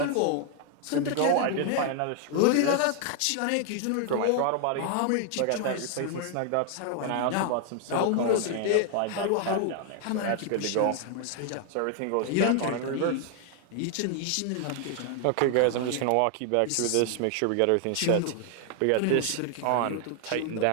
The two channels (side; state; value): both; different; correlation 0.00